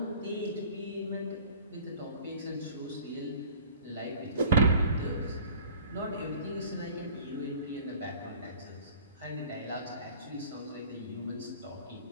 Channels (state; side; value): inverted; both; correlation -0.47